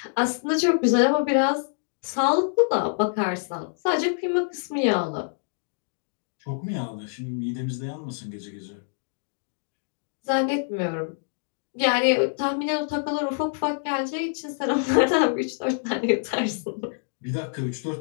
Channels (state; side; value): silent; right; digital silence